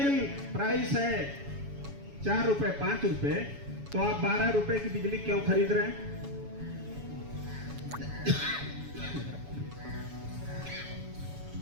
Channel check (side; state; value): left; late; 7.1 ms